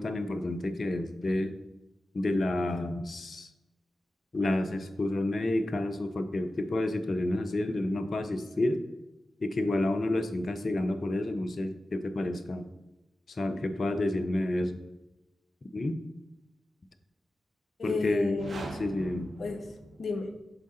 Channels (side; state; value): both; normal; correlation 0.94